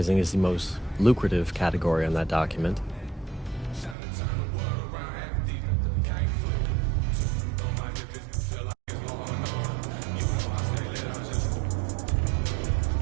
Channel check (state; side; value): drops out; left; at 4.0 s